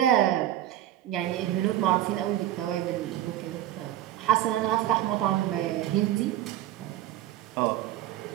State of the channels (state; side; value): quieter; left; 13.2 dB